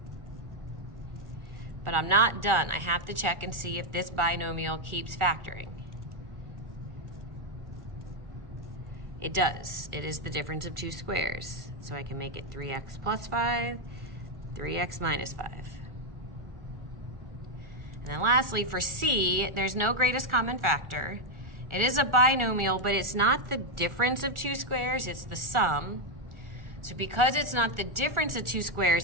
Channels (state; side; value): late; left; 1.4 ms